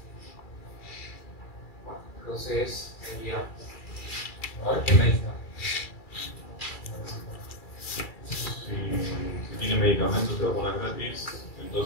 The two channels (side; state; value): right; late; 2.3 ms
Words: bueno, entonces sería. A ver qué me dice. Si tiene medicamentos, te vacunas gratis,